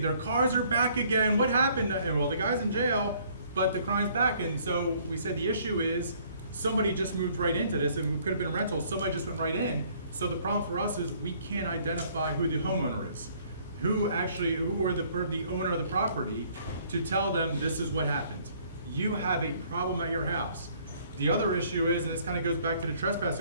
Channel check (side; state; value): both; inverted; correlation -0.61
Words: cars are back again, what happened? And well, the guy's in jail, but the crime's back. And so we said the issue is somebody just moved right into this, and it could have been a rental, somebody just went right in. So the problem for us is we can't identify who the homeowner is, who or the owner of the property, to tell them this is what happened. You have a problem at your house. The other issue is, and this kind of goes back to the trespass